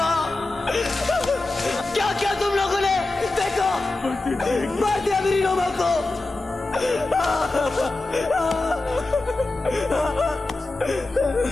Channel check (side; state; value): right; quieter; 3.1 dB